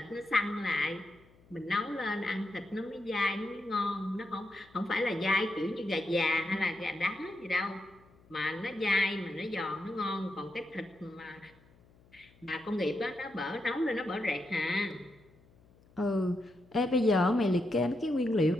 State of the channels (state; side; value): noise; left; hum, 28 dB below the sound